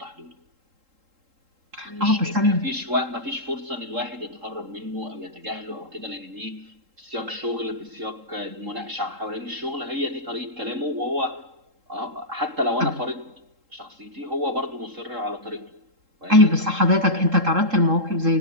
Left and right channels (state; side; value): late; left; 3.7 ms